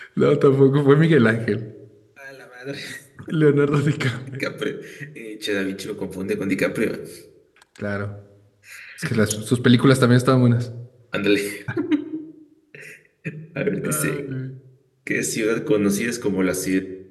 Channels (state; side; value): identical; both; correlation 1.00